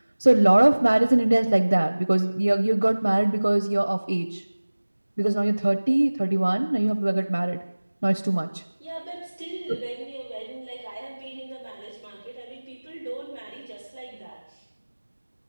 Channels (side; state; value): both; inverted; correlation -1.00